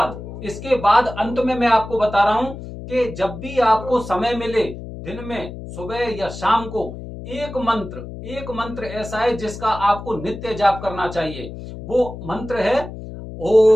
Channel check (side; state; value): left; noise; hum, 11 dB below the sound